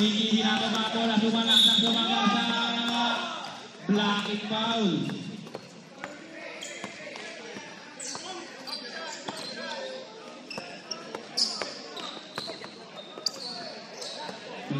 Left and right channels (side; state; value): both; identical; correlation 1.00